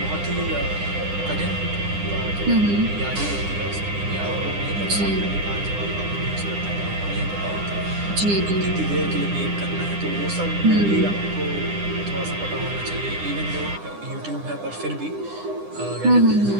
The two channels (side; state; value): left; late; 9.9 ms